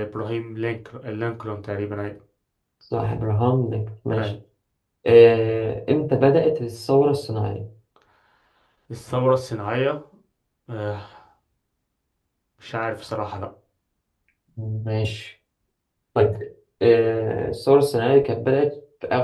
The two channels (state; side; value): identical; both; correlation 1.00